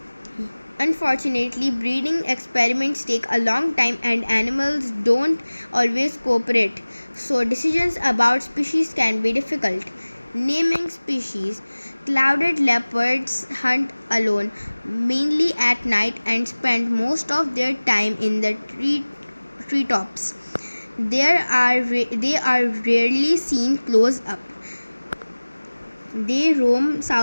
Unfortunately, breeding experiments take a long time and animals don't always cooperate, so decisions about species can be difficult. Naming species. Clouded leopards hunt alone, mainly at night, and spend most of their time in the treetops. They are rarely seen close up. They roam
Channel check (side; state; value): both; inverted; correlation -1.00